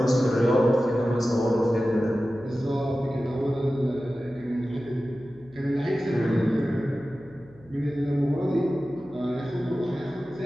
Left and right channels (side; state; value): left; noise; hum, 26 dB below the sound